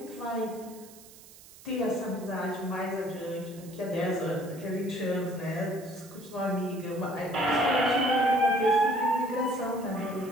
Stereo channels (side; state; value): right; noise; hiss, 20 dB below the sound